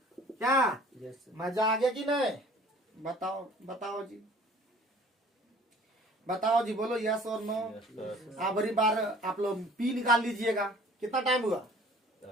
क्या मजा आ गया कि नहीं? बताओ बताओ जी, बताओ जी, बोलो यस और नो। Yes, sir. आखिरी बार आप लोग P निकाल लीजिएगा। कितना टाइम हुआ?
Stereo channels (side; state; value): both; normal; correlation 0.51